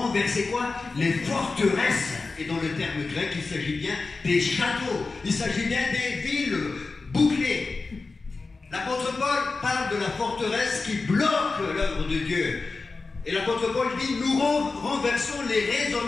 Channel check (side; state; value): right; quieter; 3.9 dB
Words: quoi? Les forteresses. Et dans le terme grec, il s'agit bien des châteaux, il s'agit bien des villes bouclées. L'apôtre Paul parle de la forteresse qui bloque l'œuvre de Dieu. Et l'apôtre Paul dit, nous renversons les